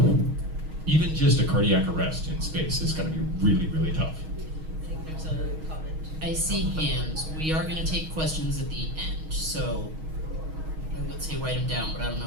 even just a cardiac arrest in space is going to be really, really tough. I think there's a comment. I see hands. We are going to take questions at the end, so I would say write them down, but I don't know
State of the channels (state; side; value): late; left; 6.3 ms